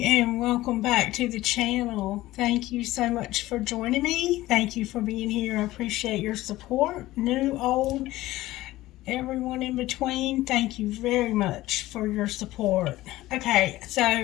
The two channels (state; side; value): quieter; right; 16.8 dB